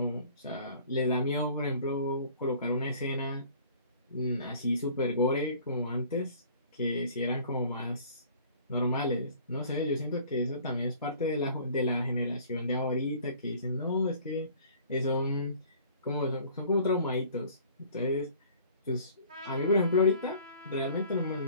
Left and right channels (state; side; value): inverted; both; correlation -0.51